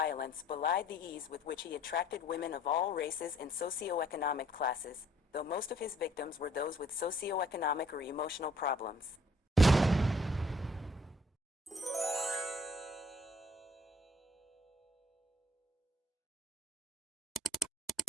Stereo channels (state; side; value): normal; both; correlation 0.60